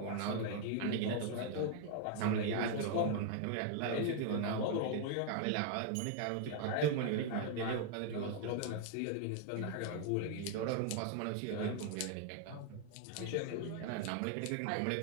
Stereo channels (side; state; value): both; different; correlation 0.00